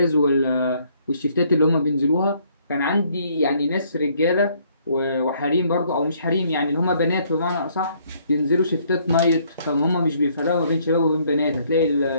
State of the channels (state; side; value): inverted; both; correlation -0.65